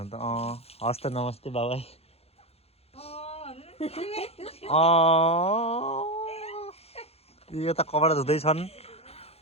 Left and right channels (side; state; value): right; late; 0.29 ms